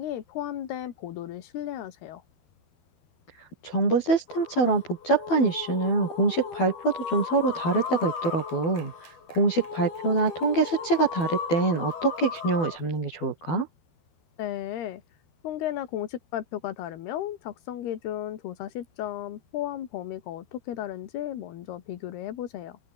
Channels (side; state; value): right; late; 12 ms